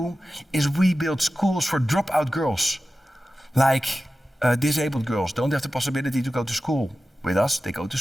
is we build schools for dropout girls, like disabled girls don't have the possibility to go to school. With us, they go to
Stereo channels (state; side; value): normal; both; correlation 0.94